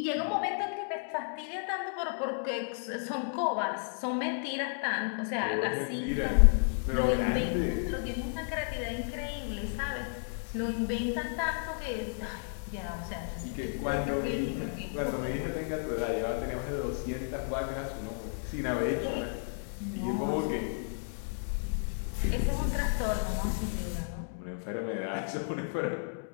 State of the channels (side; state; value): right; silent; digital silence